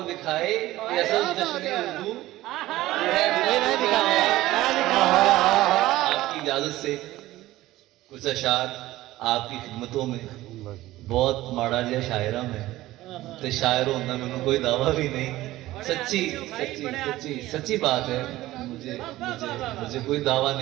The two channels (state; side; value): quieter; left; 16.5 dB